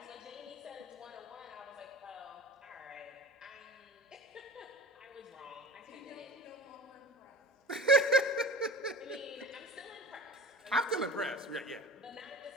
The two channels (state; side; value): normal; both; correlation 0.36